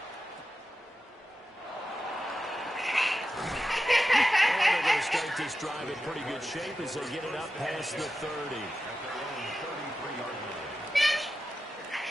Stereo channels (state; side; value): normal; both; correlation 0.92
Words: And they're going to start this drive in pretty good shape as they get it up past the 30.